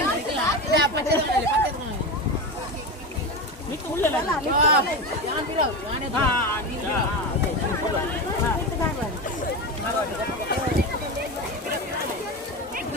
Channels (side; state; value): both; normal; correlation 0.20